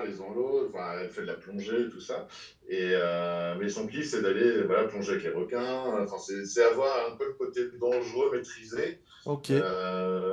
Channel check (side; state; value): both; identical; correlation 1.00